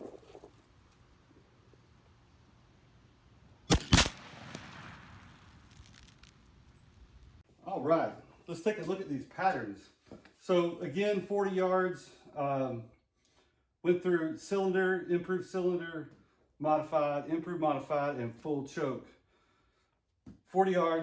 All right, let's take a look at these patterns. So again, 40 yards, went through cylinder, improved cylinder, modified, improved modified, and full choke. 40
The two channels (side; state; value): both; identical; correlation 1.00